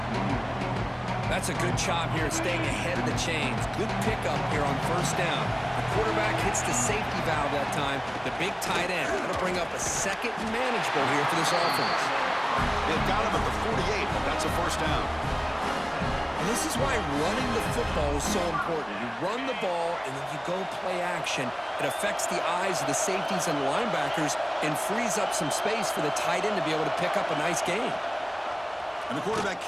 That's a good job here, staying ahead of the chains. Good pickup here on first down. The quarterback hits the safety valve that time. The big tight end. That'll bring up a second and manageable here for this offense. They've got him at the 48, but that's a first down. And this is why running the football is so important. You run the ball, and then you go play action. It affects the eyes of the safeties and linebackers and frees up some space for the tight end to be able to pick up a nice gain. And the quarterback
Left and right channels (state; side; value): identical; both; correlation 1.00